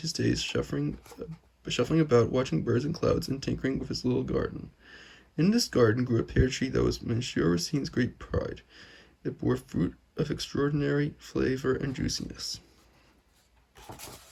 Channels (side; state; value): both; identical; correlation 1.00